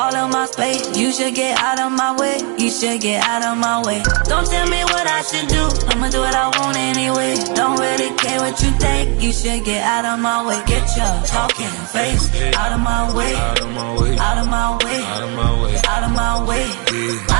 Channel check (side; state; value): left; quieter; 35.6 dB